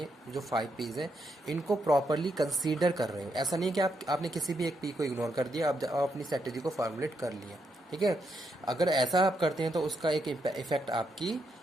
जो 5 P's हैं, इनको प्रॉपरली कंसीडर कर रहे हो. ऐसा नहीं है कि आपने किसी भी एक P को इग्नोर कर दिया, आप अपनी स्ट्रेटेजी को फॉर्मुलेट कर लिया. ठीक है. अगर ऐसा आप करते हैं तो उसका एक इफेक्ट आपकी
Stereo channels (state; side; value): normal; both; correlation 0.80